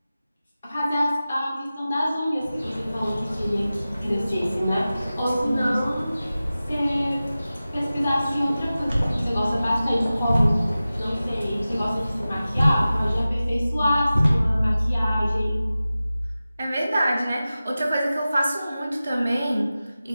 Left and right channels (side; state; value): both; inverted; correlation -0.96